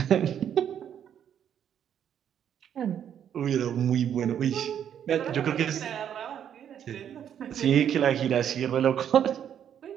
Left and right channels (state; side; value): quieter; left; 9.3 dB